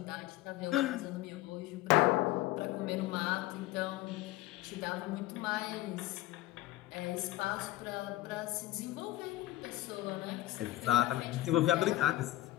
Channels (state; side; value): quieter; right; 16.5 dB